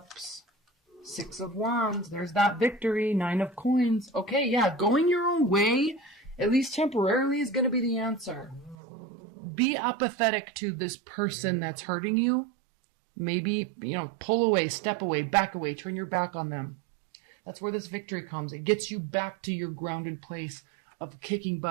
6 of Wands. There's that victory. 9 of Coins. Okay, yeah, going your own way, at least temporarily, is going to be the answer. Be apathetic to this person that's hurting you. Maybe, pull away, step away, back away, turn your back on them. That's where this victory comes. It gets you back to your grounded place of kicking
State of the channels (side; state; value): left; drops out; at 8.8 s